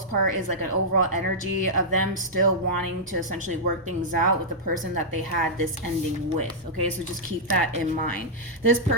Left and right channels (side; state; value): both; normal; correlation -0.09